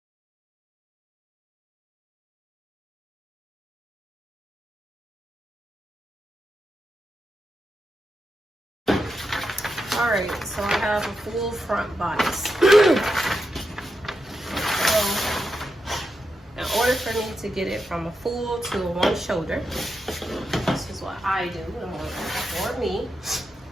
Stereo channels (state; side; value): normal; both; correlation 0.86